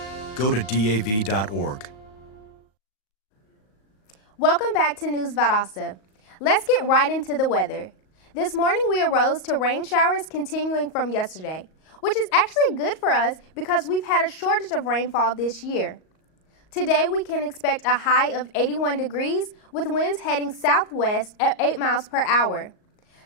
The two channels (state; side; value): late; right; 38 ms